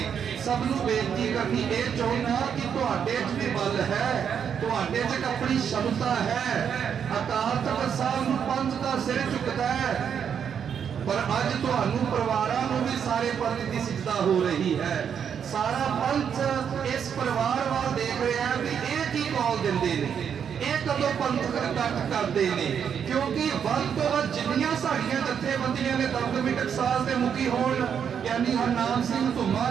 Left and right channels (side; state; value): left; quieter; 7.8 dB